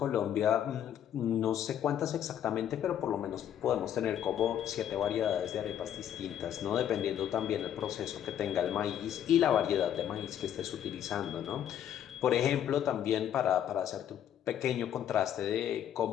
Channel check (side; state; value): right; quieter; 10.1 dB